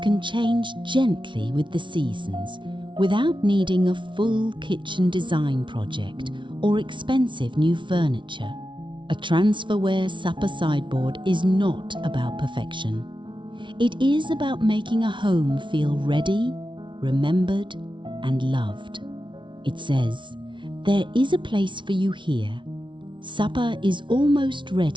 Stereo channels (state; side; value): late; left; 0.24 ms